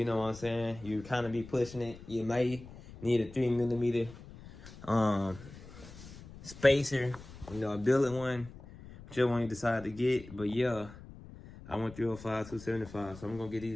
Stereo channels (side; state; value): left; noise; rumble, 17 dB below the sound